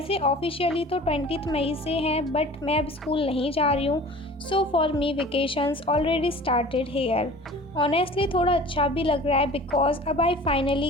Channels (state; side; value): normal; both; correlation 0.43